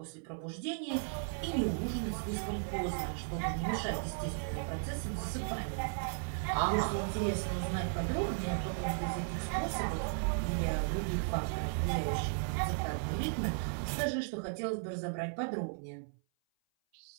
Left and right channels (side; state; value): left; silent; 54 dB below the other